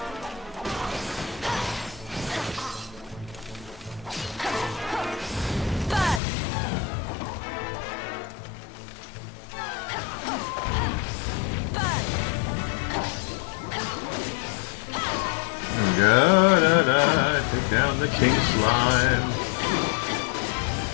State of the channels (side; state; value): right; drops out; at 6.2 s